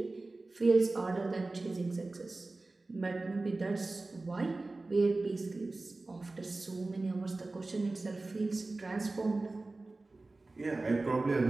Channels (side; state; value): left; quieter; 3.2 dB